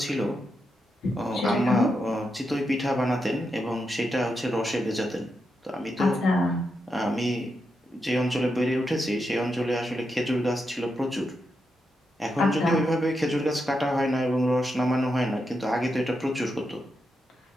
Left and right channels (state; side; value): normal; both; correlation 0.85